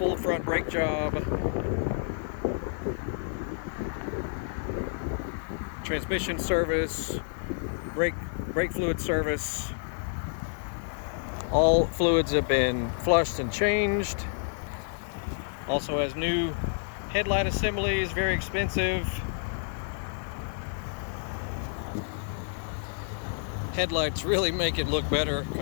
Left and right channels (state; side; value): silent; right; digital silence